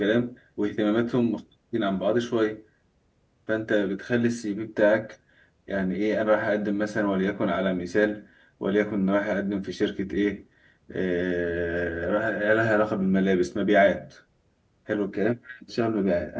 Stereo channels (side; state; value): both; identical; correlation 1.00